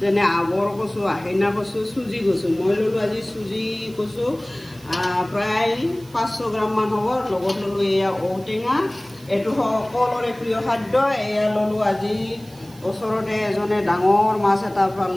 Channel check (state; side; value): noise; right; hiss, 25 dB below the sound